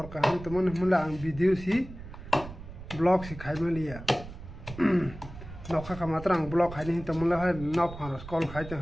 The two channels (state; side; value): noise; right; rumble, 13 dB below the sound